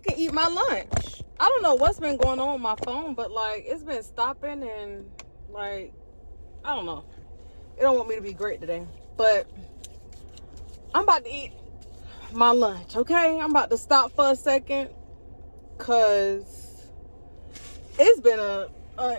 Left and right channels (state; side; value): inverted; both; correlation -1.00